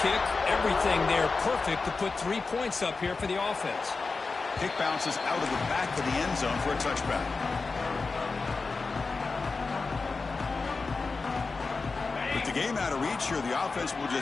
everything there perfect to put 3 points up here for the offense. Kick bounces out of the back of the end zone for a touchback. With the game out of reach here, the offense will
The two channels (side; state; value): right; quieter; 4.2 dB